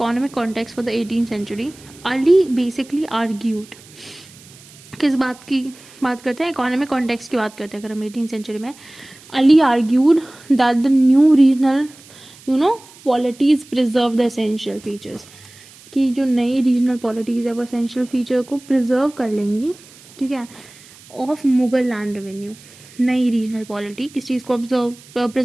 context for the 18th century, Ali basically argued किस बात की बात करते हैं, economic context की बात करते हैं अगर हम 18th सेंचुरी में. Ali argued that the new regional पॉलिटीज preserve the essential features, कि जो नई रीजनल पॉलिटीज है वो एसेंशियल फीचर को प्रिजर्व कर लेंगी, ठीक है, ऑफ मुगल लैंड रेवेन्यू. नई रीजनल पॉलिटी किस चीज़ को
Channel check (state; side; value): noise; right; hiss, 23 dB below the sound